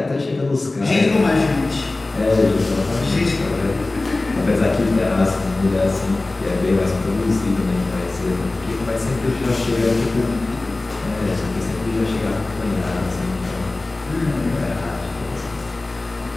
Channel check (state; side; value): quieter; right; 3.1 dB